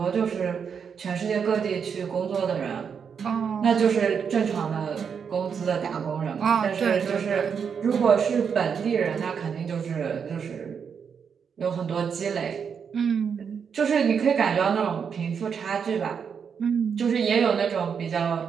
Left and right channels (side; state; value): left; quieter; 6.8 dB